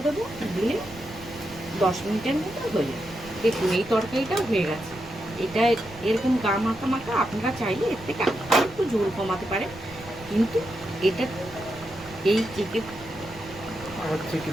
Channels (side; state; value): right; noise; rumble, 19 dB below the sound